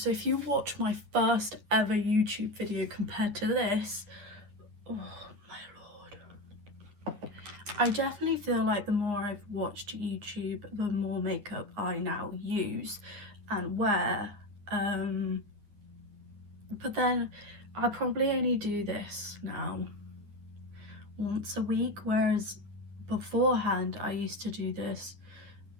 if you watch my first ever YouTube video compared to this, oh my lord, I definitely feel like the more I've watched YouTube, the more makeup I now use and wear. But then I probably only do this now once a week, whereas beforehand I used to do this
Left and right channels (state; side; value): late; left; 9.6 ms